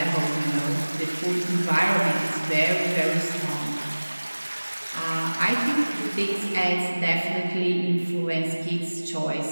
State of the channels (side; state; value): both; inverted; correlation -1.00